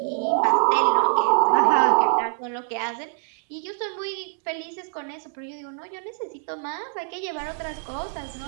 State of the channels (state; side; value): silent; left; digital silence